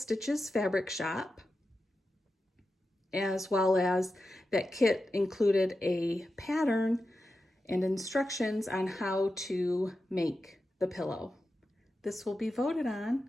Fabric Shop, as well as that kit included a pattern and instructions on how to make the pillow. This will be voted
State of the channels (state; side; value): normal; both; correlation 0.91